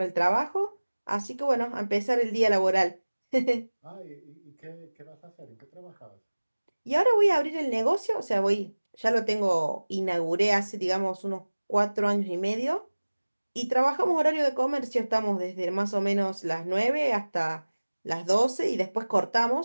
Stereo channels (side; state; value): both; inverted; correlation -1.00